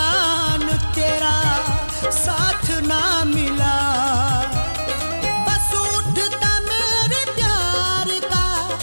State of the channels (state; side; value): inverted; both; correlation -1.00